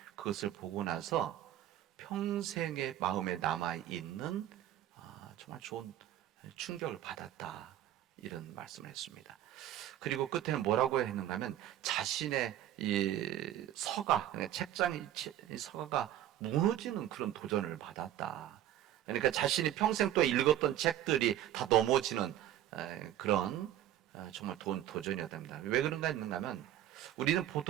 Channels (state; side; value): quieter; left; 12.3 dB